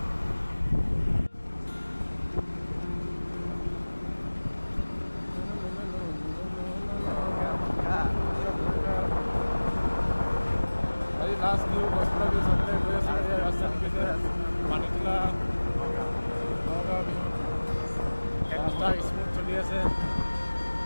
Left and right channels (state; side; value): inverted; both; correlation -1.00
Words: আজি লাষ্ট নিউ কষ্ট দিছে গৈ আছো ৰাস্তা দিছে মানিতলা নগাঁও বিহু ৰাস্তা স্মুথ চলি আছে